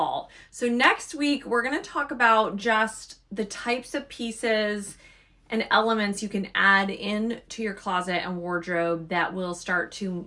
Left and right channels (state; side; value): identical; both; correlation 1.00